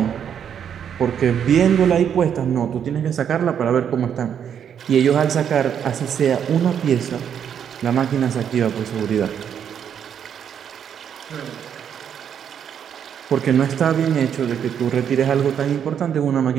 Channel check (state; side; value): quieter; left; 8.4 dB